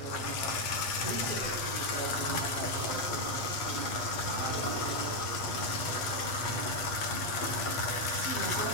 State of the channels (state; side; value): late; right; 7.9 ms